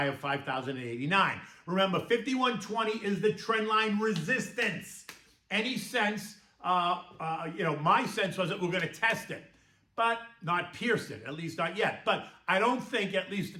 of 5,089. Remember, 5120 is the trend line resistance. Any sense, my sense was that we're going to test it, but not pierce it, at least not yet. But I don't think at least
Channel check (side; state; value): both; identical; correlation 1.00